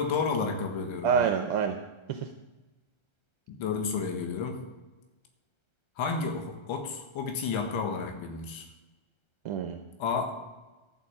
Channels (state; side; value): late; right; 1.3 ms